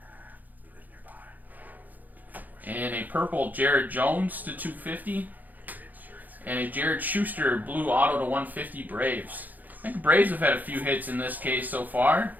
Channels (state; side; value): late; left; 0.083 ms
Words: And a purple Jared Jones to 250. And a Jared Schuster blue auto to 150 Braves. I think Braves have had a few hits in this case so far.